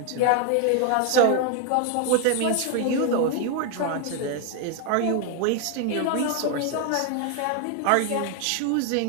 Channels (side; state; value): both; different; correlation 0.01